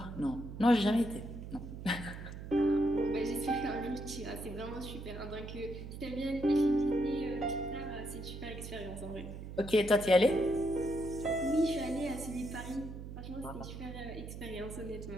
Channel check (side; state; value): right; noise; hum, 10 dB below the sound